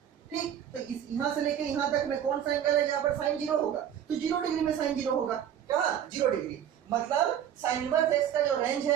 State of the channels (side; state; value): left; quieter; 9.7 dB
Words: ठीक, तो इस यहां से लेके यहां तक में कौन सा एंगल है जहां पर sin 0 होगा? तो 0 डिग्री में sin 0 होगा। क्या? 0 डिग्री। मतलब sin इनवर्स x का जो रेंज